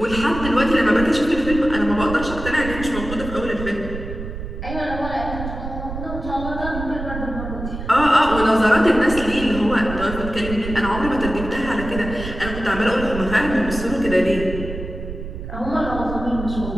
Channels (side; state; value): right; noise; rumble, 8 dB below the sound